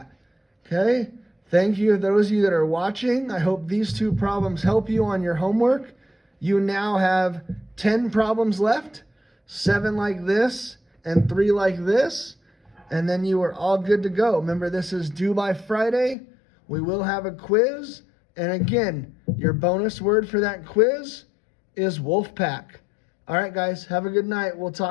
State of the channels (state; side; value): drops out; right; at 16.2 s